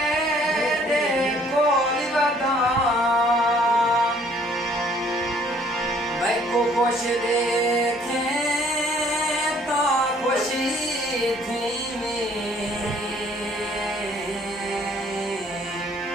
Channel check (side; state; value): both; normal; correlation 0.60